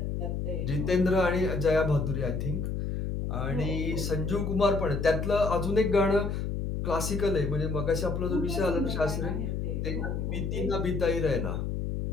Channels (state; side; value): noise; left; hum, 2 dB below the sound